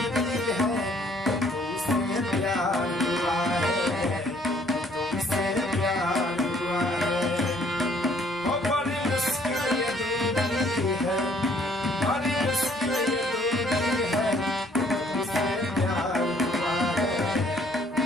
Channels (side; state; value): both; normal; correlation 0.62